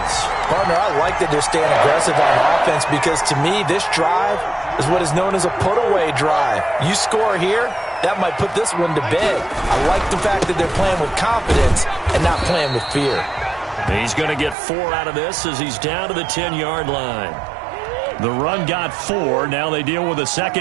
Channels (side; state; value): left; drops out; at 14.6 s